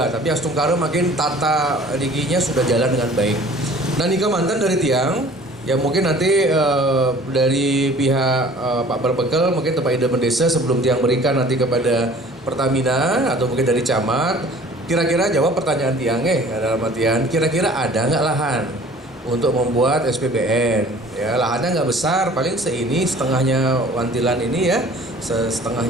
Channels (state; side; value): normal; both; correlation 0.49